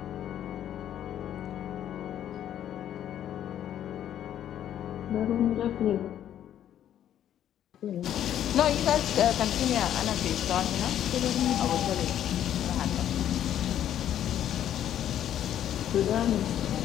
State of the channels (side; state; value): right; quieter; 10.8 dB